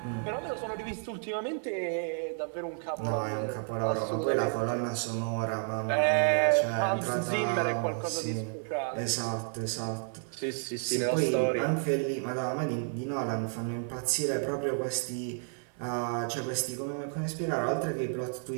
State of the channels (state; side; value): silent; left; 57 dB below the other